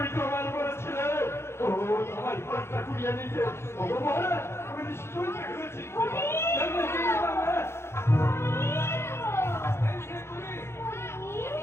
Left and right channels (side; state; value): right; late; 0.12 ms